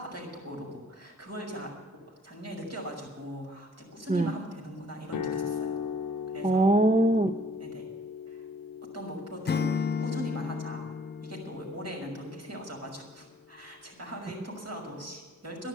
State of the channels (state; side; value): normal; both; correlation 0.59